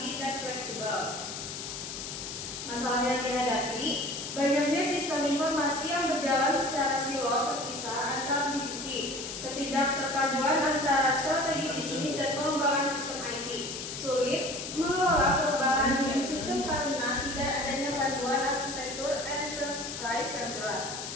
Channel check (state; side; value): noise; left; hiss, 7 dB below the sound